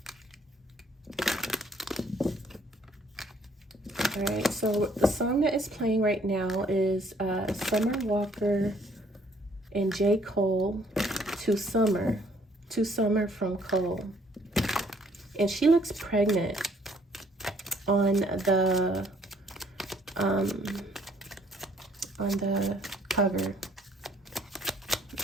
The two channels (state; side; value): normal; both; correlation 0.63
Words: All right, so the song that is playing right now is Summer Walker and JCole, To Summer from Cole. And she looks pregnant on the cover,